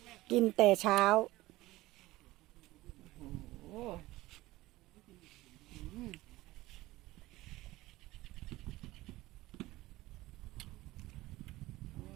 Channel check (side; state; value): left; quieter; 18.2 dB